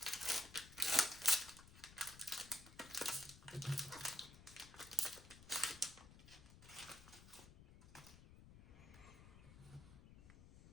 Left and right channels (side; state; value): left; noise; rumble, 17 dB below the sound